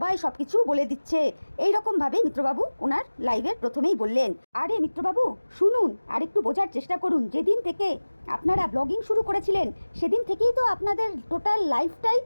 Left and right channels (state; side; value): inverted; both; correlation -1.00